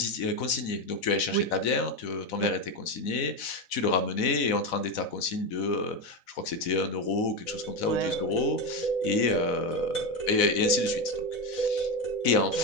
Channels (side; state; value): right; late; 4.0 ms